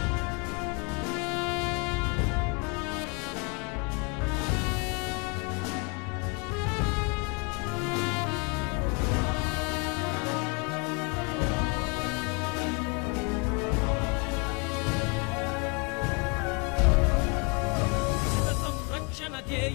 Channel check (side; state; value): right; quieter; 31.6 dB